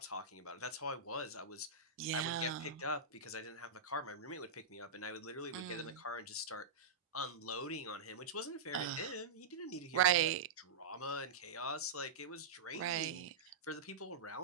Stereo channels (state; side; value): quieter; left; 4.7 dB